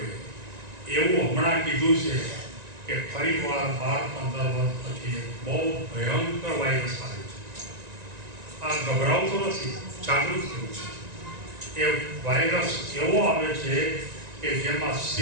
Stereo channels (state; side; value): late; left; 1.9 ms